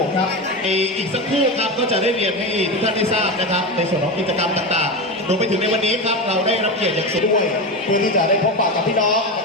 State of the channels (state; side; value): normal; both; correlation 0.20